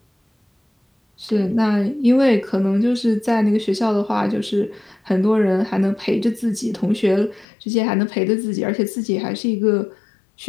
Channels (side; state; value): right; drops out; at 7.5 s